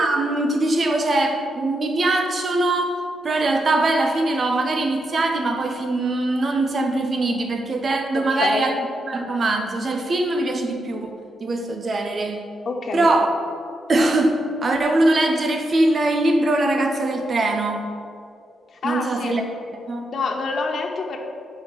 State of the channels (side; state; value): both; normal; correlation 0.83